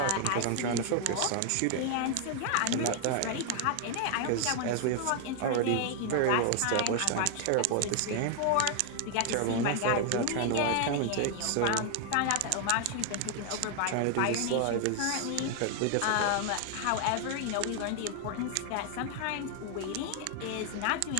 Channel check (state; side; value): different; both; correlation 0.00